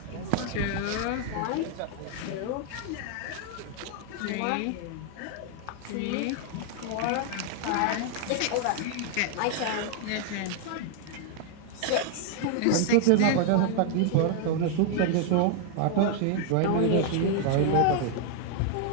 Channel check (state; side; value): different; both; correlation 0.00